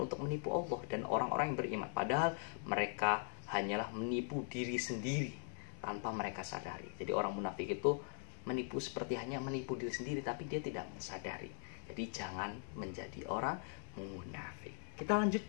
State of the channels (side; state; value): right; silent; 50 dB below the other